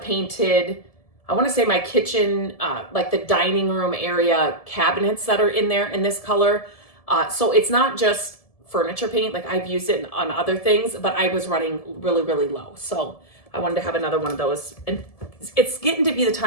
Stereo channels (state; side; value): late; right; 1.7 ms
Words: I want to say my kitchen, like the dining room area cabinets that are in there in this color. So it's not just furniture paint, like I've used it on other things, but I was running really, really low. So I wanted to have another one of those. And it's getting to be the